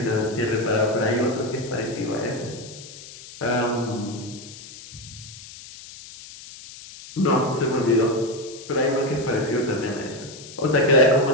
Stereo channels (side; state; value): left; noise; hiss, 16 dB below the sound